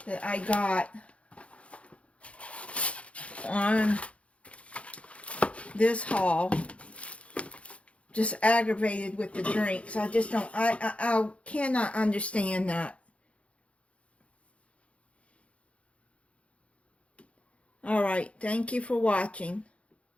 that I got on this haul. Just aggravated with the drinks. I just don't, I cannot understand that. Alright, thank you for watching.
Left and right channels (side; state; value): right; late; 0.062 ms